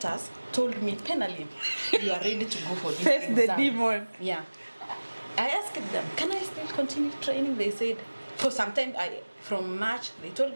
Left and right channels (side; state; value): both; inverted; correlation -1.00